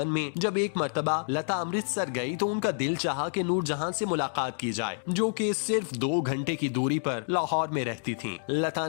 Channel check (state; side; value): silent; right; digital silence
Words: में जब एक मर्तबा लता अमृतसर गई तो उनका दिल चाहा कि नूरजहां से मुलाकात की जाए, जो कि सिर्फ 2 घंटे की दूरी पर लाहौर में रहती थीं। लता